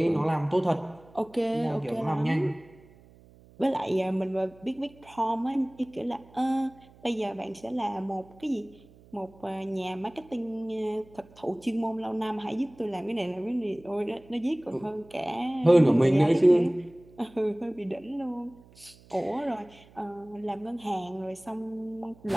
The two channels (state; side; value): noise; right; hum, 25 dB below the sound